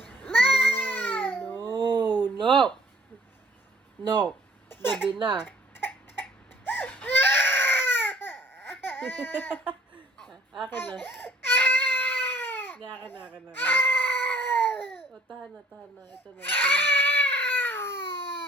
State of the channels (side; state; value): both; normal; correlation 0.56